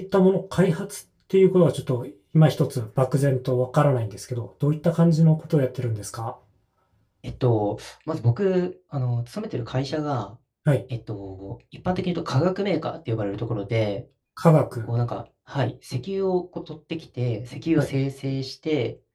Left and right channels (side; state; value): both; identical; correlation 1.00